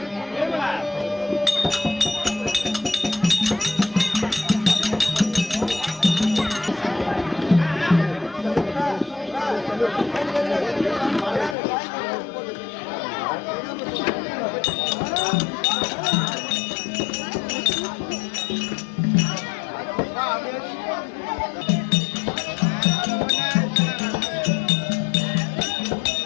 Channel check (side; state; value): right; drops out; at 11.6 s